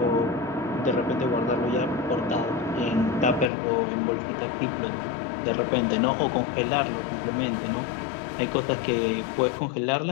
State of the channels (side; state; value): right; drops out; at 3.5 s